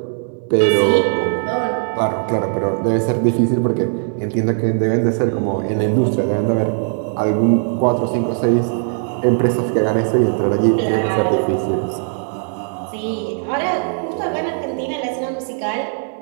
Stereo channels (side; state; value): left; silent; 64 dB below the other